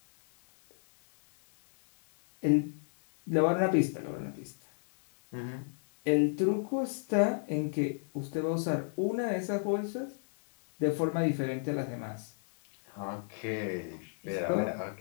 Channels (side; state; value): right; silent; digital silence